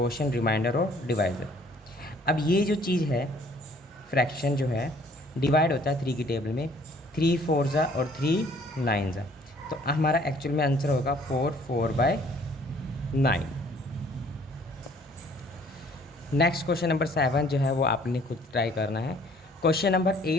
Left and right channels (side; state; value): both; normal; correlation 0.58